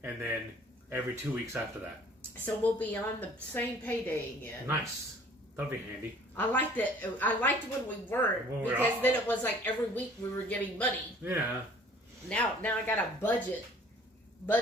And then every 2 weeks after that. So we'll be on the same payday again. Nice. That'll be handy. I liked it. I liked when we weren't because then it was like every week we were getting money. Yeah. Now I got a budget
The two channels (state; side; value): normal; both; correlation 0.52